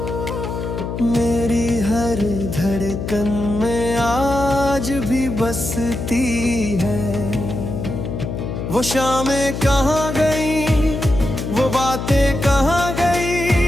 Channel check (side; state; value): left; noise; hum, 5 dB below the sound